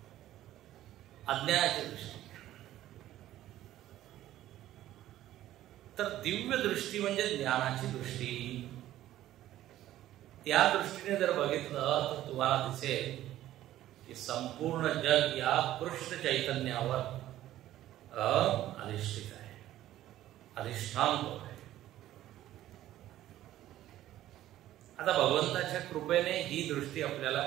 अज्ञानाची दृष्टी. तर दिव्य दृष्टी म्हणजे ज्ञानाची दृष्टी. त्या दृष्टीने जर बघितलं तर तुम्हाला दिसेल की संपूर्ण जग या कृष्ण चैतन्यावर अधिष्ठित आहे, अधिष्ठान आहे. आता भगवंताच्या कृपेने ही दृष्टी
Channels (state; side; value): quieter; left; 13.7 dB